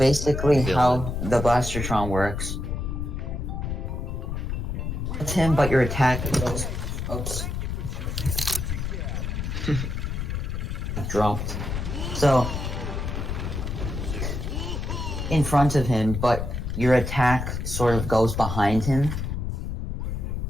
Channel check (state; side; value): noise; left; rumble, 3 dB below the sound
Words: how the Blastertron works. It's him, but your attack goes. Oops. Dropped. So, in front of him, but your attack sort of goes behind him.